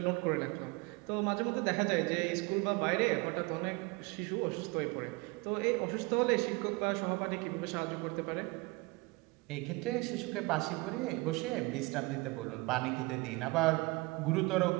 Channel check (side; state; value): left; quieter; 24.8 dB